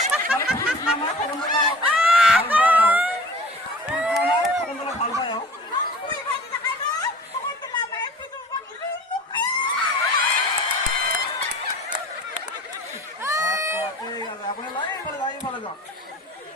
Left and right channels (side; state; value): both; normal; correlation 0.43